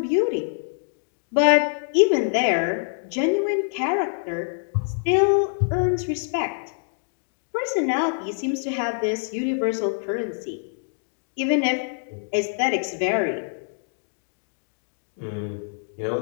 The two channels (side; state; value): right; silent; digital silence